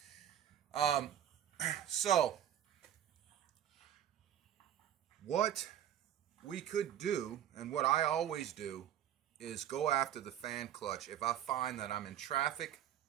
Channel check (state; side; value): quieter; left; 10.6 dB